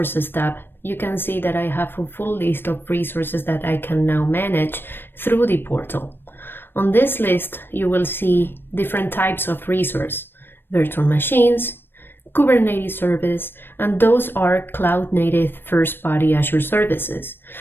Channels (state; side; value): late; right; 0.099 ms